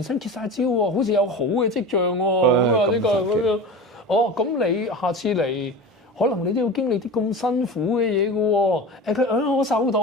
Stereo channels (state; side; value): normal; both; correlation 0.31